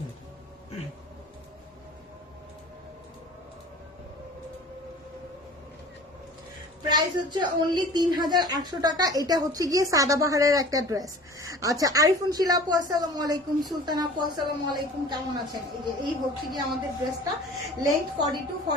প্রাইস হচ্ছে অনলি 3800 টাকা। এটা হচ্ছে গিয়ে সাদাবাহারের একটা ড্রেস। আচ্ছা, আরিফুন শিলা আপু আসসালামু আলাইকুম, সুলতান আপু আসসালামু আলাইকুম, কেমন আছেন? এই হচ্ছে গিয়ে আমাদের ড্রেসটা। লেন্থ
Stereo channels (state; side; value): normal; both; correlation 0.44